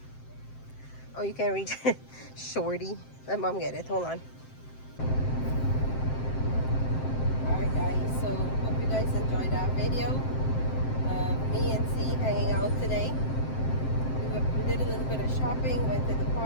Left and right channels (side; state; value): right; late; 7.7 ms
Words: Oh, you can't reach it. Shorty. Let mom get it. Hold on. Alright guys, so hope you guys enjoyed that video. Me and C hanging out today. We did a little bit of shopping, went to the